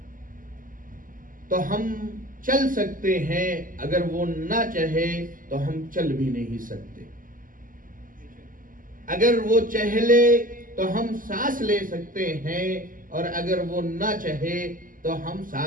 تو ہم چل سکتے ہیں، اگر وہ نہ چاہے تو ہم چل بھی نہیں سکتے. اگر وہ چاہے لے تو ہم سانس لے سکتے ہیں، اور اگر وہ نہ چاہے تو ہم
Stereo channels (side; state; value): left; late; 0.40 ms